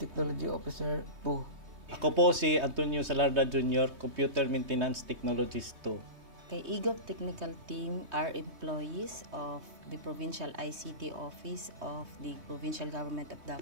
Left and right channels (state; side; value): late; left; 3.2 ms